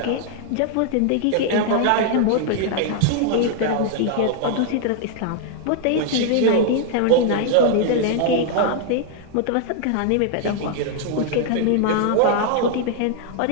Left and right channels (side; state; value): both; different; correlation 0.00